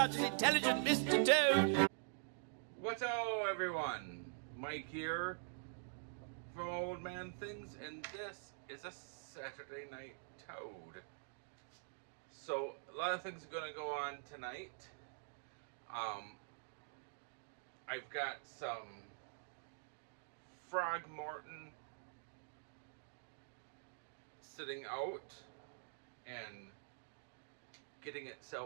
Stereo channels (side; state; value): left; silent; digital silence